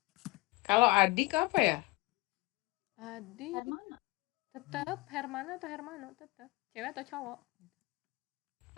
Kalau adik apa ya? Adik Hermana. tetap Hermana atau Hermano tetap. Cewek atau cowok?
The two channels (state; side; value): quieter; right; 23.3 dB